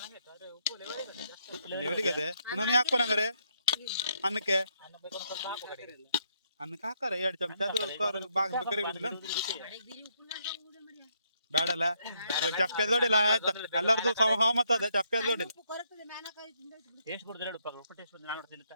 ಲೆವೆಲಿಗೆ ಅದೇ ನಾನು ಹಾಕ್ಬೋನಂಗಾರೆ ಅನ್ನಕ್ಕೆ ಹಾಕಾರ 2 ಚಮಚ ಅದು ಬಾಗ್ಬೇಕಾರೆ ಇರುದಿಲ್ಲ ಬೇಡಲ್ಲ. ಚಪ್ಪೆ ದೊಡ್ಡಿಲ್ಲ ಆಯ್ತಾ ಎಲ್ಲರದು ಸಹಮತ ಅದ. ಚಪ್ಪೆ ದೊಡ್ಡಿಲ್ಲ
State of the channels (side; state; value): both; inverted; correlation -0.73